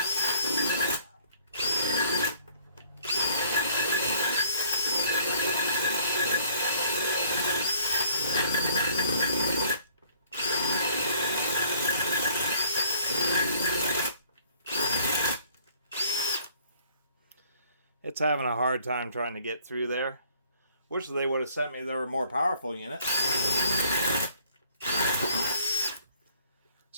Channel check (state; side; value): inverted; both; correlation -0.59